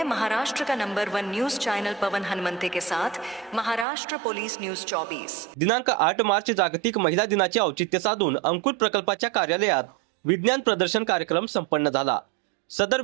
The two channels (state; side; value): drops out; left; at 3.9 s